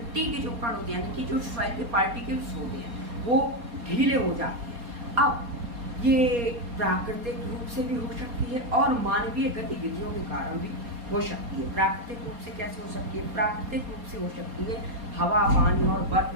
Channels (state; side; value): late; left; 4.2 ms